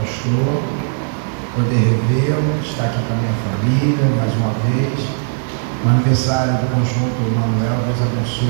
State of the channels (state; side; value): silent; left; 61 dB below the other